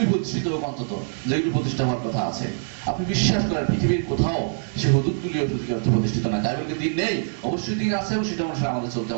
প্রতিষ্ঠিত হোক, অন্তত যেগুলি প্রতিষ্ঠা হওয়ার কথা আছে। আপনি বিশ্বাস করেন পৃথিবীর কোথাও সেই হুদুদগুলিও প্রতিষ্ঠিত না? তাই বলে দিন নেই, অবশ্যই দিন আছে, এবং সেটা অনুসারে আমাদের চলতে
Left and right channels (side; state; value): left; silent; digital silence